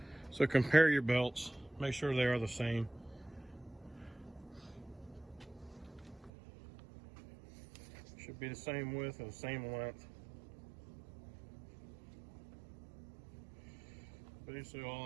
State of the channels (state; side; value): drops out; left; at 6.3 s